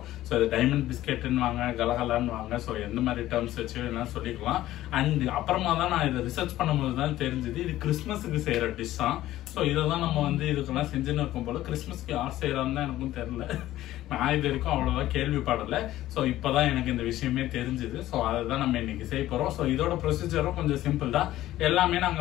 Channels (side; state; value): right; quieter; 14.7 dB